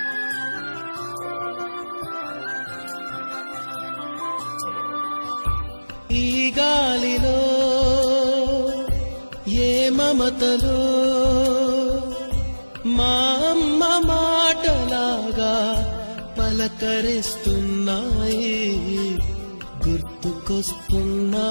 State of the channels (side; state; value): both; inverted; correlation -1.00